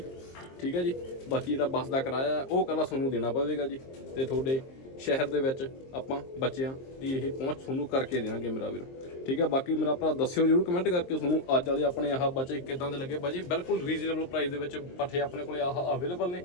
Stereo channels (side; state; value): right; late; 23 ms